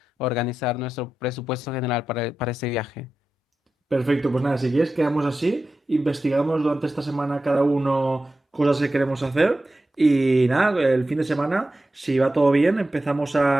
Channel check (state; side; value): normal; both; correlation 0.92